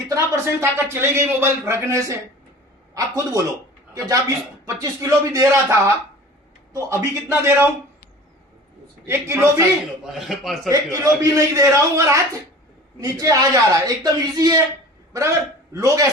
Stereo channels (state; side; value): normal; both; correlation 0.42